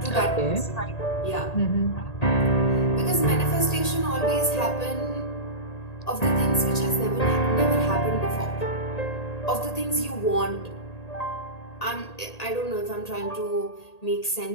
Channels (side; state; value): right; late; 1.8 ms